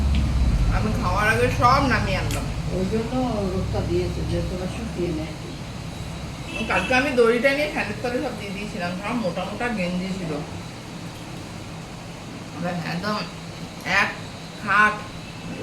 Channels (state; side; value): identical; both; correlation 1.00